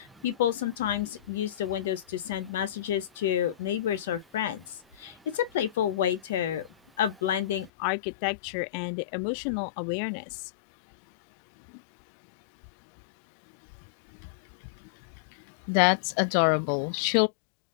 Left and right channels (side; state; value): right; drops out; at 7.7 s